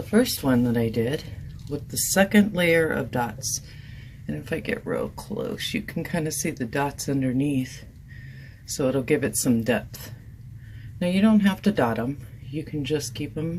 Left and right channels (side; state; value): both; identical; correlation 1.00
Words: first one that I did with the second layer of dots. And if I get real close, you can kind of see the dots underneath, so it'll give it some depth. Now you don't have to dot them, you can just keep